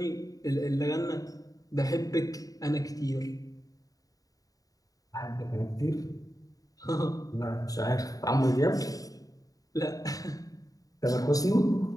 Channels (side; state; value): right; late; 0.17 ms